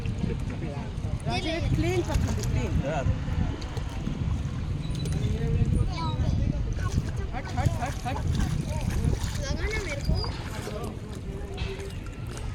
प्लेन पत्थर दे, प्लेन. हट. लगा ना मेरे को.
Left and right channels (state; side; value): identical; both; correlation 1.00